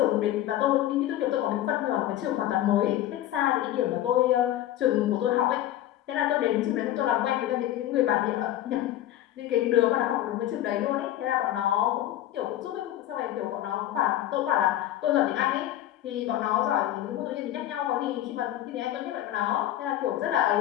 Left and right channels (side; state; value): right; quieter; 13.0 dB